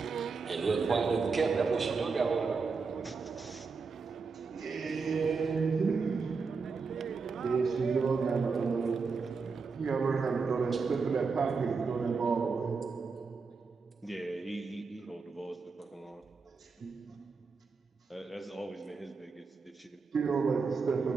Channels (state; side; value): quieter; left; 4.8 dB